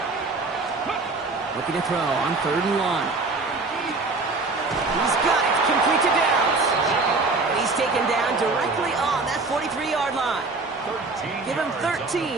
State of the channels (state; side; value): quieter; left; 3.7 dB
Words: Looking to throw on 3rd and 1. He's got it, complete to Downs. He's taken down directly on that 43-yard line. Give him